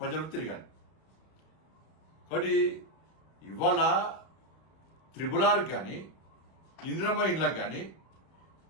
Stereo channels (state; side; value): late; right; 31 ms